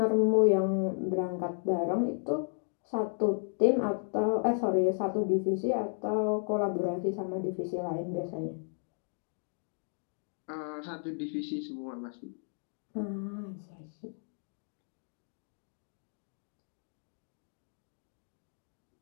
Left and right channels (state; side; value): silent; right; 55 dB below the other